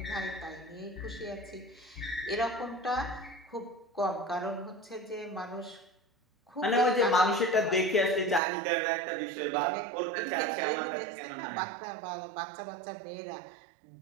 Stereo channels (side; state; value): left; drops out; at 8.4 s